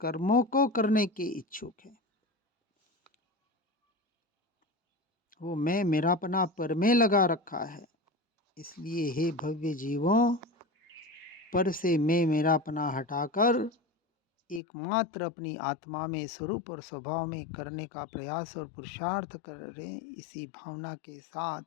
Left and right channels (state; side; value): drops out; right; at 14.6 s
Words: को करने के इच्छुक है। वो मैं मेरापना पर में लगा रखा है। इसलिए हे भव्य जीवों, पर से मैं मेरापना हटाकर एकमात्र अपनी आत्मा में स्वरूप और स्वभाव में करने का प्रयास और पुरुषार्थ करें। इसी भावना के